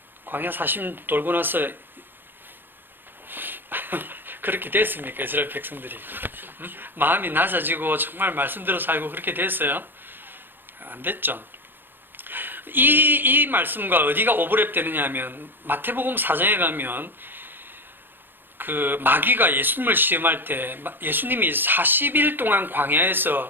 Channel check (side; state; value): left; late; 0.097 ms